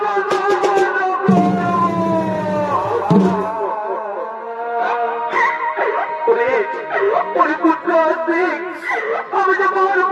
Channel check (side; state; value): both; identical; correlation 1.00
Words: সম্পন্ন করো। ওরে পুত্র আসছি, আমি যে